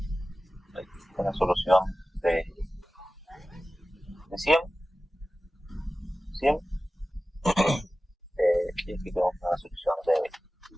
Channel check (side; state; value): both; normal; correlation 0.96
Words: una solución de 100. Y aquí tenemos una solución de